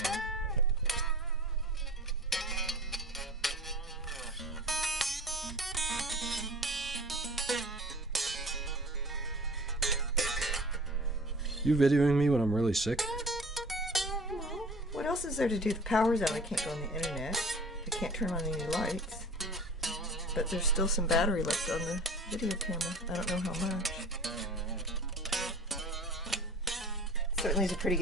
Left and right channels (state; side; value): normal; both; correlation 0.42